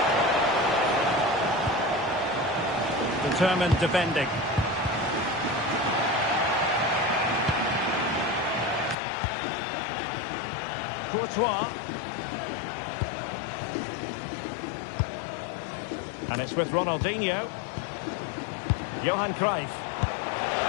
Determined defending. Courtois. And it's with Ronaldinho. Johan Cruyff.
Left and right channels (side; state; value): right; drops out; at 9.0 s